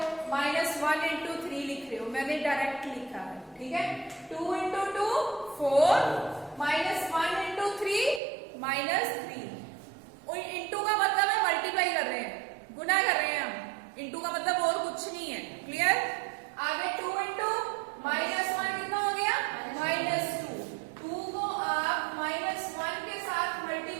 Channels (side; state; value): left; drops out; at 8.2 s